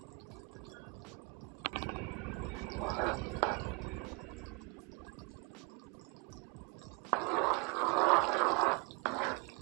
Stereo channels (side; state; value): left; quieter; 27.5 dB